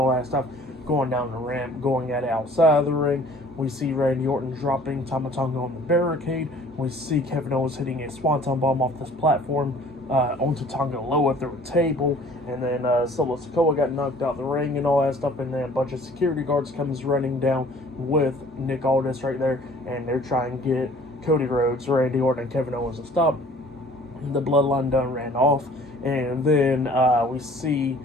that stuff, going down the ramp, going at it outside of the ring. We see Randy Orton dropping Tama Tonga on the barricade. We see Kevin Owens hitting a swanton bomb off this platform onto Tonga Loa through a table. And then Solo Sikoa got knocked out the ring and all that stuff. And then a bunch of security guards comes running down with Nick Aldis right there. And they're trying to get Cody Rhodes, Randy Orton, and Kevin Owens to stop. The Bloodline done ran off. And then we see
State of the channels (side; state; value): both; normal; correlation 0.52